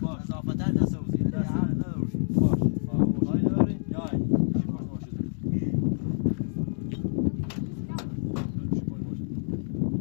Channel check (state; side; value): silent; right; digital silence